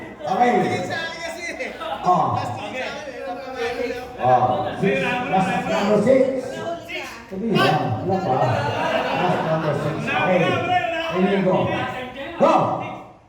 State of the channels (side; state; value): both; identical; correlation 1.00